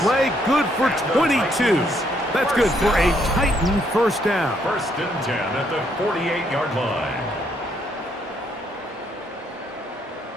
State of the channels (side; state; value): both; normal; correlation 0.72